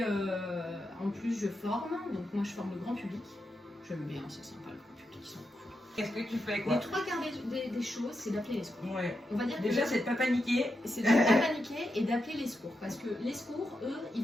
en plus, je forme. Donc moi, je forme le grand public. J'aime bien, c'est sympa, le grand public, ils sont cool. Qu'est-ce que tu fais, quoi? Les 3/4 des choses, c'est d'appeler les secours. Ouais. On va dire déjà, c'est de pas paniquer. C'est de ne pas paniquer et d'appeler les secours. Parce que les secours, eux, ils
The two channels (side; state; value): both; normal; correlation 0.86